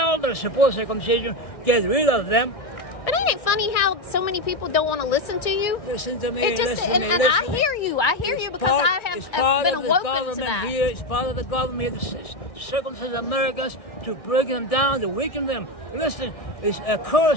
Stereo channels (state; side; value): late; right; 1.6 ms